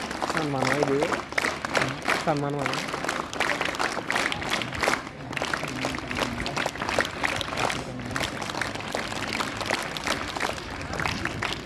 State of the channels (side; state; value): both; identical; correlation 1.00